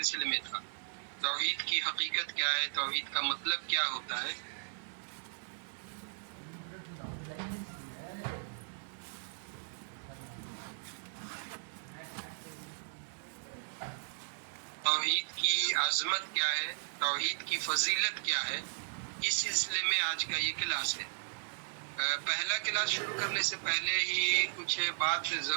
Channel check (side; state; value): left; silent; digital silence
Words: میں تھا۔ توحید کی حقیقت کیا ہے، توحید کا مطلب کیا ہوتا ہے۔ توحید کی عظمت کیا ہے، توحید کی فضیلت کیا ہے، اس سلسلے میں آج کا یہ کلاس ہے۔ پہلا کلاس شروع کرنے سے پہلے ہی کچھ بات